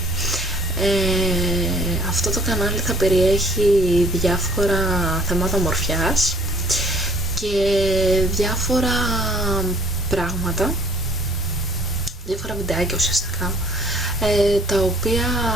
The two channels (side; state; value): both; normal; correlation 0.56